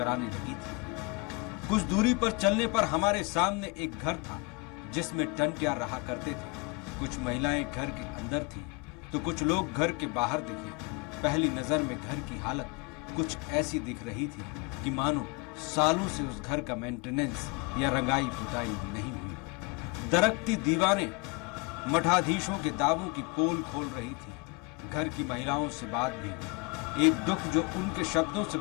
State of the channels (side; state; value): right; quieter; 29.0 dB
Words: लगी थी। कुछ दूरी पर चलने पर हमारे सामने एक घर था जिसमें टंट्या रहा करते थे। कुछ महिलाएं घर के अंदर थी तो कुछ लोग घर के बाहर दिखे। पहली नजर में घर की हालत कुछ ऐसी दिख रही थी कि मानो सालों से उस घर का मेंटेनेंस या रंगाई पुताई नहीं हुई। दरकती दीवारें मठाधीशों के दावों की पोल खोल रही थी। घर की महिलाओं से बात भी, एक दुख जो उनके शब्दों से